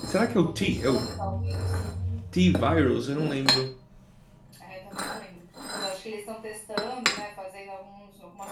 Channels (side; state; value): both; identical; correlation 1.00